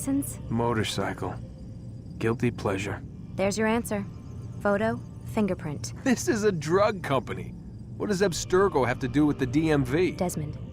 Motorcycle. Guilty pleasure. There's your answer. Photo, fingerprint. This is a drug company. What does Abstergo have to do with the DMV? Desmond,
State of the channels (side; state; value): both; identical; correlation 1.00